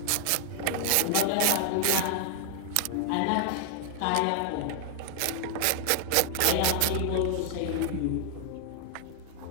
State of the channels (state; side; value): different; both; correlation 0.00